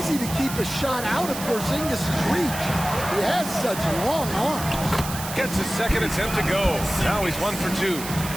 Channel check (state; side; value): noise; right; hiss, 9 dB below the sound